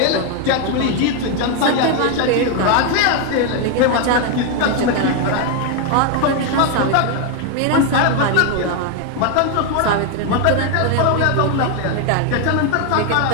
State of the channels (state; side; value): different; both; correlation 0.01